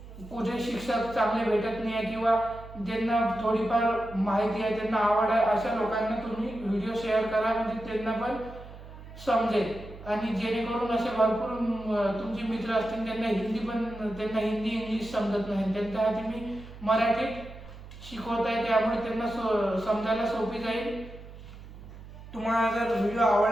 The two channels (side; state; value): right; noise; hum, 16 dB below the sound